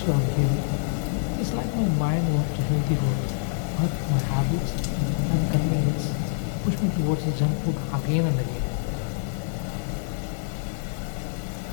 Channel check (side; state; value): right; silent; digital silence